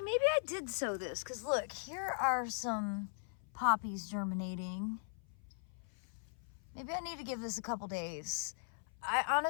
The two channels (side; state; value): right; silent; 52 dB below the other